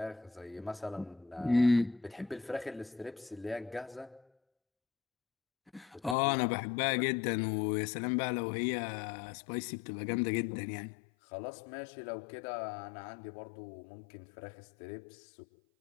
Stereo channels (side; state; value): right; drops out; at 6.2 s